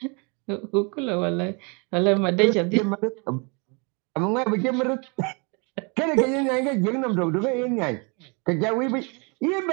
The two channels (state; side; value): quieter; left; 32.3 dB